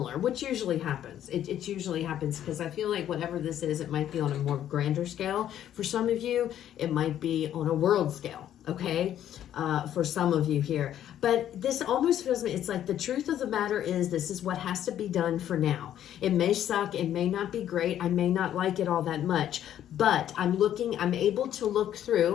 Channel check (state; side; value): quieter; right; 11.0 dB